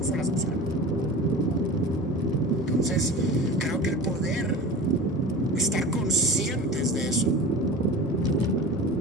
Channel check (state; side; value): normal; both; correlation 0.34